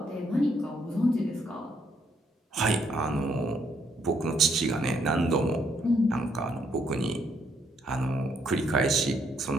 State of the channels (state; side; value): normal; both; correlation 0.71